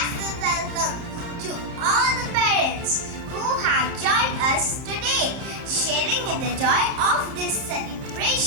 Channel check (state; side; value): late; left; 31 ms